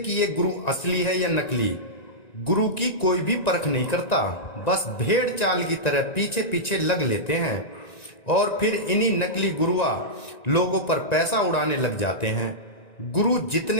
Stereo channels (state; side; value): late; right; 1.9 ms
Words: ये गुरु असली है या नकली। गुरु की कोई भी परख नहीं करता, बस भेड़ चाल की तरह पीछे पीछे लग लेते हैं और फिर इन्हीं नकली गुरुआ लोगों पर पैसा उड़ाने लग जाते हैं। गुरु